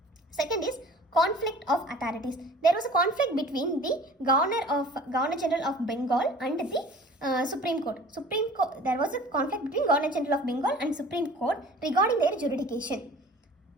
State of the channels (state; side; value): normal; both; correlation 0.46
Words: Second is conflict of authorities. There was a conflict between the Governor-General of Bengal and the Supreme Court. There was a conflict between Governor-General of Bengal and Supreme Court regarding their jurisdiction.